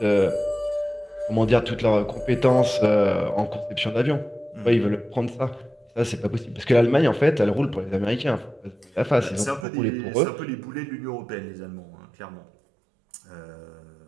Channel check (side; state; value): left; drops out; at 9.7 s